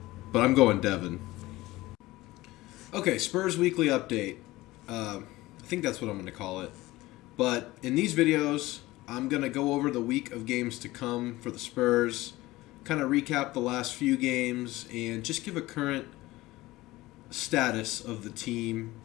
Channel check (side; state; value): right; quieter; 18.5 dB